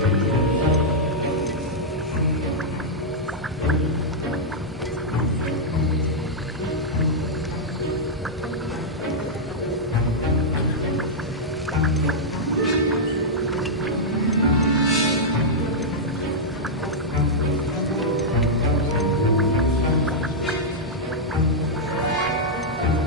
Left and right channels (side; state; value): both; normal; correlation -0.08